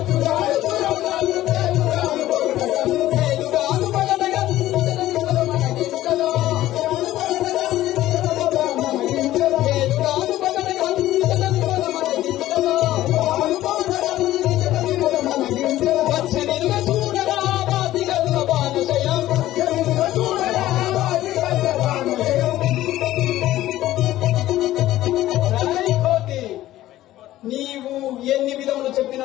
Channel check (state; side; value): quieter; right; 14.7 dB